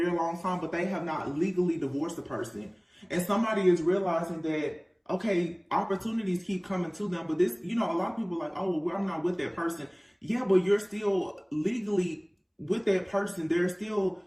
long time, but they have not legally divorced the person. And somebody is realizing that, okay, opportunities keep coming to them, but this, a lot of people are like, oh, well, I'm not with that person. Yeah, but you're still legally with that person. There's still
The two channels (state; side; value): identical; both; correlation 1.00